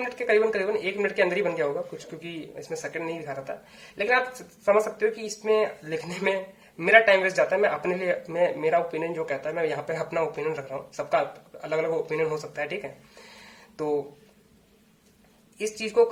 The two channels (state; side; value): identical; both; correlation 1.00